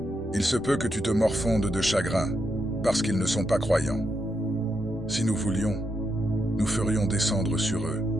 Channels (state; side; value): noise; left; rumble, 18 dB below the sound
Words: Il se peut que tu te morfondes de chagrin, parce qu'ils ne sont pas croyants. Si nous voulions, nous ferions descendre sur eux,